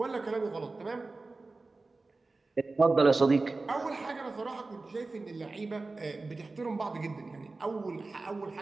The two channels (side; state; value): left; quieter; 3.5 dB